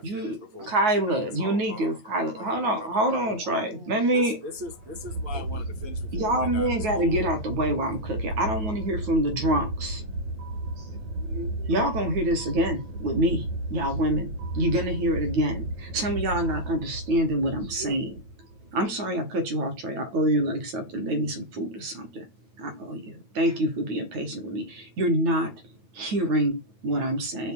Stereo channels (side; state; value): left; late; 9.3 ms